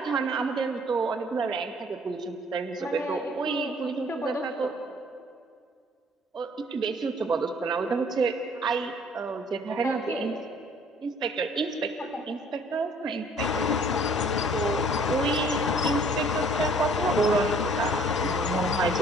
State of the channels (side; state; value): both; normal; correlation 0.57